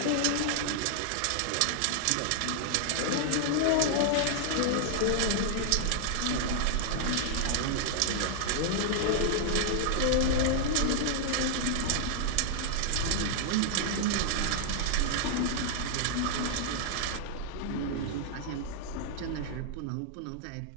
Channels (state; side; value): different; both; correlation -0.01